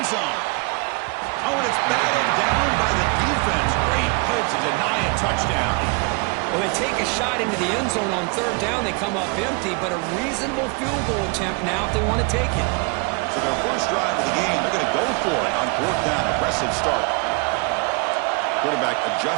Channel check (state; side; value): quieter; left; 31.2 dB